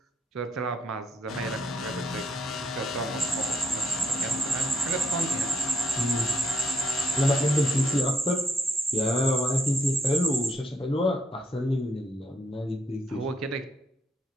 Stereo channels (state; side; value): normal; both; correlation 0.74